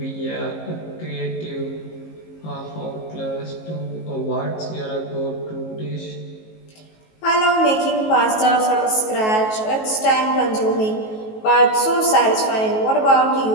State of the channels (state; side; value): late; right; 19 ms